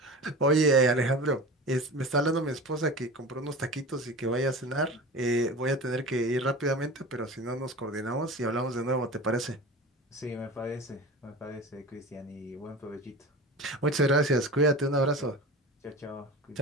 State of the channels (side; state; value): both; normal; correlation 0.33